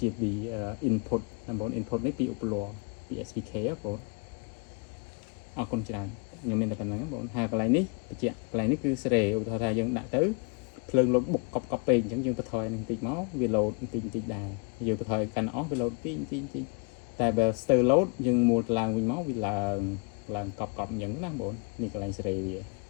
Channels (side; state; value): right; quieter; 33.6 dB